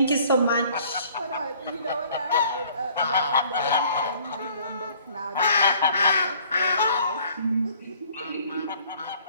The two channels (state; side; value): inverted; both; correlation -0.57